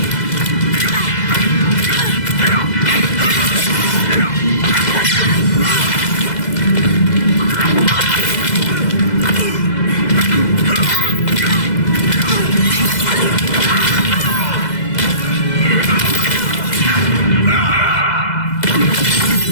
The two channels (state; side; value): late; right; 2.0 ms